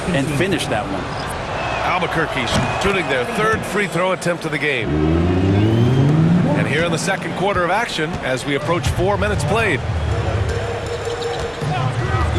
and finish that one. Albuquerque shooting their third free throw attempt of the game. And here in the second quarter of action as we approach 4 minutes played.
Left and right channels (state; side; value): identical; both; correlation 1.00